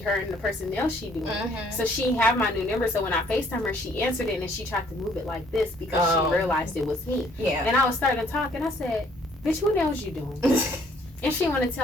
and the person nails she doing. So she had my new number. So when I FaceTime her, she answered it and then she tried to move it like this because she realized it was me. Yeah. And I was starting to talk and I said, bitch, what nails you doing? And she wanted to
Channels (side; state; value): both; normal; correlation 0.62